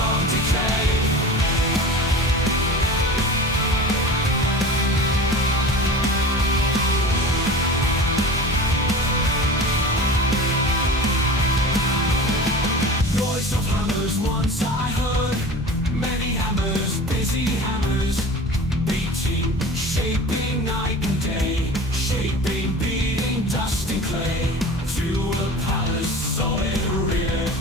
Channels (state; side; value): normal; both; correlation 0.35